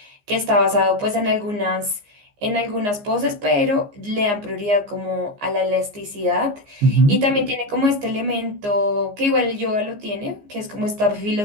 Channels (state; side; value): late; left; 15 ms